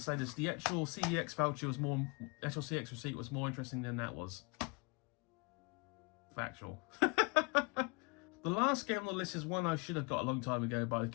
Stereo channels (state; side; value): quieter; right; 29.5 dB